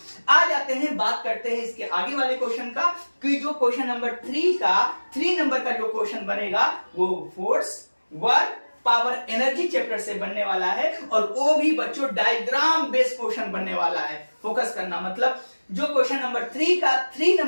आ जाते हैं, बात करते हैं इसके आगे वाले क्वेश्चन का, कि जो क्वेश्चन नंबर 3 का 3 नंबर का जो क्वेश्चन बनेगा वो force, work, power, energy chapter से बनने वाला है, और वो भी बच्चों डायग्राम बेस्ड क्वेश्चन बनने वाला है। फोकस करना, मतलब जो क्वेश्चन नंबर 3 का 3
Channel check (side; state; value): both; inverted; correlation -1.00